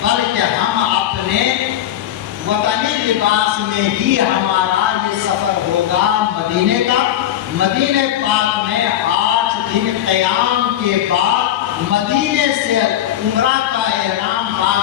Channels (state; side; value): quieter; right; 11.6 dB